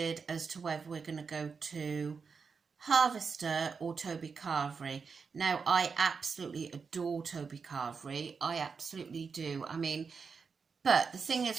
as to whether we're going to go to Harvester or Toby Carvery. Now, I absolutely adore Toby Carvery. I absolutely do. I mean, but the thing is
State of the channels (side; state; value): left; quieter; 5.4 dB